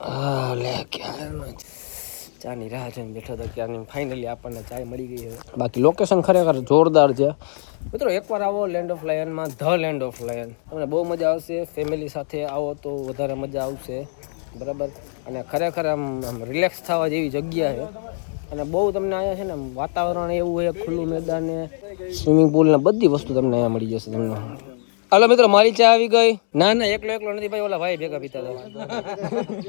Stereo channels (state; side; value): silent; right; digital silence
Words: લે ક્યારનો ચાની રાહ જોઈને બેઠો હતો ક્યારની ફાઇનલી આપણને ચાય મળી ગઈ છે બાકી લોકેશન ખરેખર જોરદાર છે મિત્રો એકવાર આવો લેન્ડ ઓફ લાયનમાં ધ લેન્ડ ઓફ લાયન તમને બહુ મજા આવશે ફેમિલી સાથે આવો તો વધારે મજા આવશે બરાબર અને ખરેખર આમ રિલેક્સ થવા જેવી જગ્યા છે અને બહુ તમને અહીંયા છે ને વાતાવરણ એવું છે ખુલ્લું મેદાન ને સ્વિમિંગ પુલ ને બધી વસ્તુ તમને અહીંયા મળી જશે તમને હાલો મિત્રો મારી ચા આવી ગઈ ના એકલો નથી ભાઈ ઓલા ભાઈ ભેગા પીતા હતા